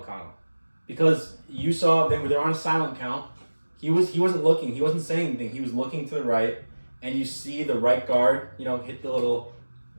because you saw they're on a silent count. He wasn't looking. He wasn't saying anything. He was looking to the right, and you see the right guard, hit the little,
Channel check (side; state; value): both; inverted; correlation -1.00